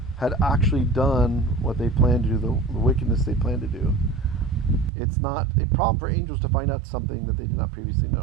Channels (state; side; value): drops out; left; at 4.9 s